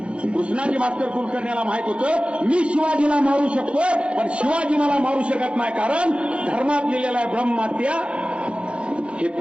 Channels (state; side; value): late; left; 0.059 ms